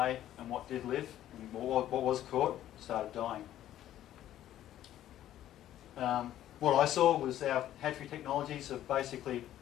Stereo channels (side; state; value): right; quieter; 12.4 dB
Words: and what did live, and what was caught, started dying. What I saw was our hatchery technologies are basically,